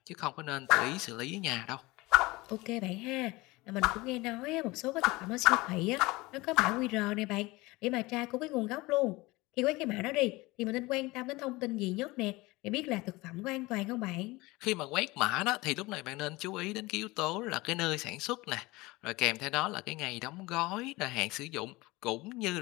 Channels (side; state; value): right; quieter; 21.7 dB